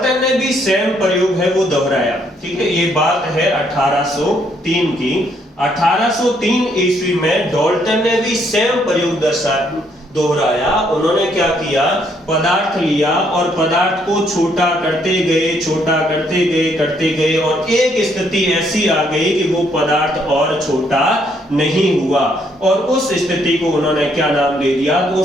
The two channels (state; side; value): normal; both; correlation 0.70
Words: ने भी सेम प्रयोग है वो दोहराया। ठीक है, ये बात है 1803 की। 1803 ईस्वी में डाल्टन ने भी सेम प्रयोग दोहराया। उन्होंने क्या किया? पदार्थ लिया और पदार्थ को छोटा करते गए, छोटा करते गए और एक स्थिति ऐसी आ गई कि वो पदार्थ और छोटा नहीं हुआ। और उस स्थिति को उन्होंने क्या नाम दे दिया? तो